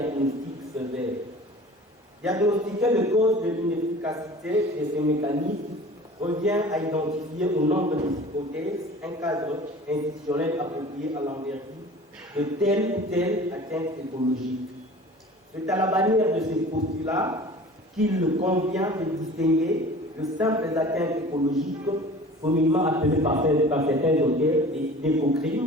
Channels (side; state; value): both; normal; correlation 0.43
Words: sévère. Diagnostiquer les causes de l'inefficacité de ces mécanismes revient à identifier au nombre des hypothèses un cadre institutionnel approprié à l'envergure de telle ou telle atteinte écologique. C'est à la bannière de ces postulats qu'il convient de distinguer de simples atteintes écologiques, communément appelées par certains auteurs